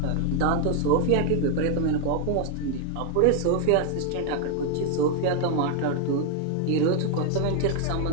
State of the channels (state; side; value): different; both; correlation 0.00